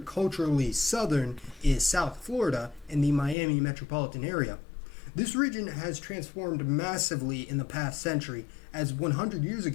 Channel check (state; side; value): drops out; right; at 3.4 s